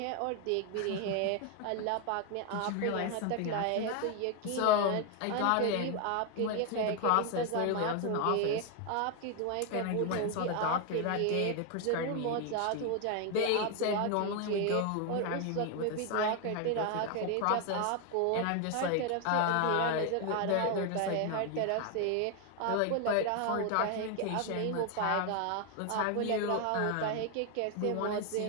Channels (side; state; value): both; different; correlation 0.01